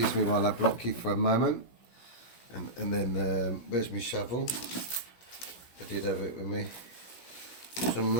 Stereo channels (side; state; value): right; late; 16 ms